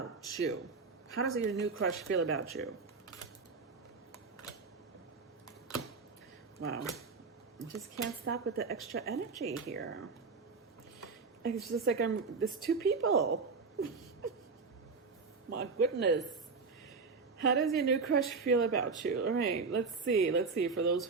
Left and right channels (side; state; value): left; quieter; 4.6 dB